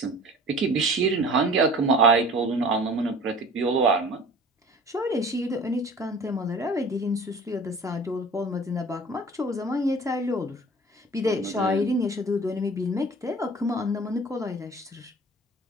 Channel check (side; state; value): both; normal; correlation 0.43